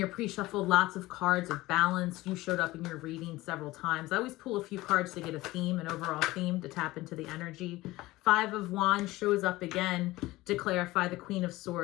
pre-shuffle, lots of cards of balance. You showed up in your reading several times. I always pull a few cards to get a theme, an overall theme, to tap into the energy. Five of Wands shows up again to clarify the Queen of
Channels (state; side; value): quieter; right; 18.8 dB